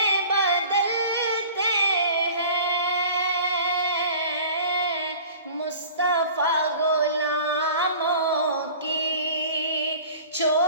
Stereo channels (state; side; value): inverted; both; correlation -0.44